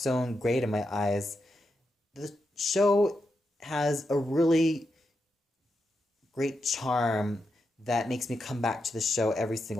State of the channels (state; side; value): normal; both; correlation 0.86